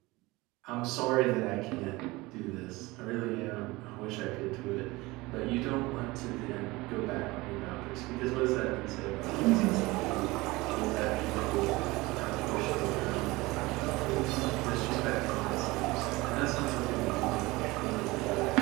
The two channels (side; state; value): left; quieter; 21.6 dB